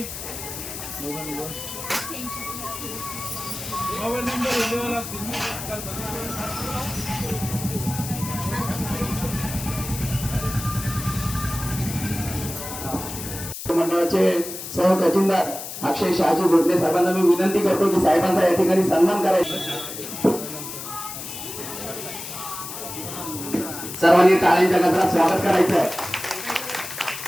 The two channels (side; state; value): left; noise; hiss, 9 dB below the sound